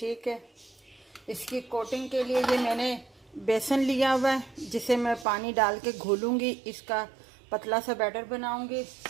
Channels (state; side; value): drops out; left; at 5.2 s